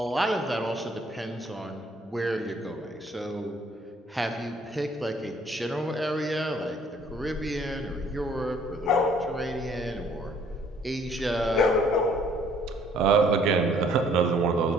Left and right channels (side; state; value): both; normal; correlation 0.60